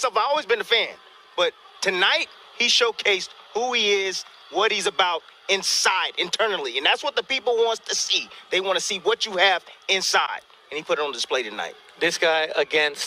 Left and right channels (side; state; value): both; identical; correlation 1.00